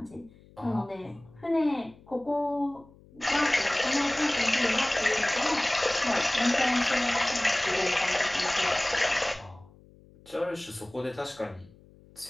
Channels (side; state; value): left; noise; hum, 25 dB below the sound